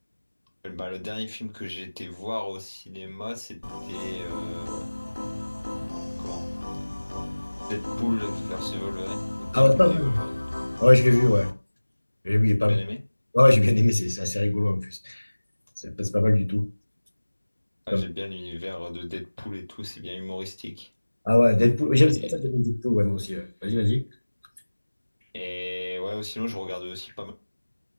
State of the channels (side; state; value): both; inverted; correlation -1.00